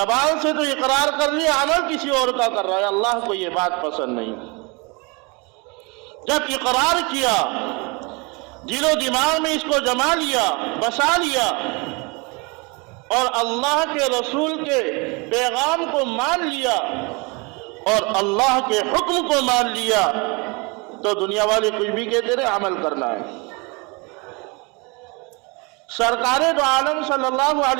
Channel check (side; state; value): left; quieter; 28.9 dB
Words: سے تو اقرار کر لیا، عمل کسی اور کا کر رہا ہے، اللہ کو یہ بات پسند نہیں۔ جب اقرار کیا، دل و دماغ میں اس کو جما لیا، بسا لیا، اور اللہ کے رسول کے پیغام کو مان لیا اور اللہ کے حکم کو مان لیا، تو دنیا والے کچھ بھی کہتے رہے، عمل کرنا ہے۔ سرکار دو عالم صلی اللہ